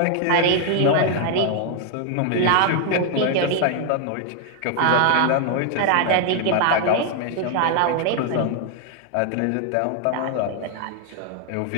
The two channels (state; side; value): different; both; correlation 0.00